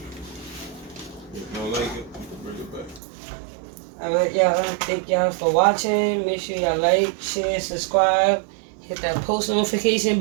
If you don't like it, you can bring it back. Alright, y'all. Thank y'all for watching. Make sure y'all like, share, subscribe. Hit that post notification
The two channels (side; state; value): left; drops out; at 3.0 s